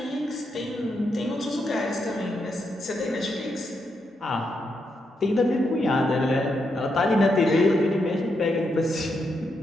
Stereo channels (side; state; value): both; normal; correlation 0.82